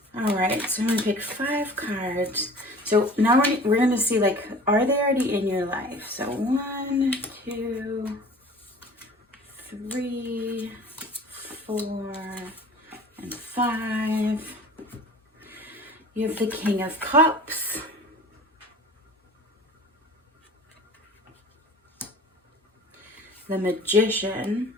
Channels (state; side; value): normal; both; correlation 0.44